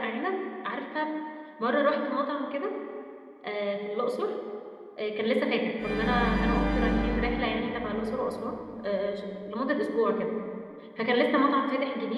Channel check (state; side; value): identical; both; correlation 1.00